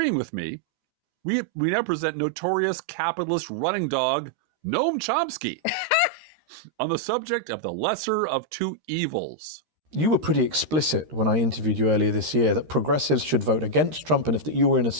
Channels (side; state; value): left; late; 13 ms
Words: with me, we now present notorious capitalist running dog Noam Chomsky on the subject of the lesser of two evils. You were pretty explicit when I interviewed you earlier this year that progressives should vote against Trump, and if that you were in a